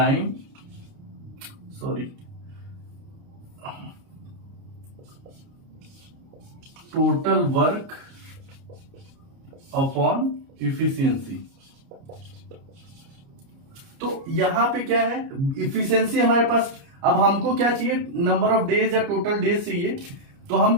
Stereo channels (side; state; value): left; late; 29 ms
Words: total work upon efficiency. तो यहां पे क्या है इफिशियंसी हमारे पास। अब हमको क्या चाहिए, नंबर ऑफ डेज या टोटल डेज चाहिए। तो हम